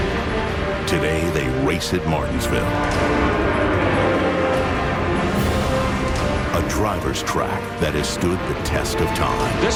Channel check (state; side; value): identical; both; correlation 1.00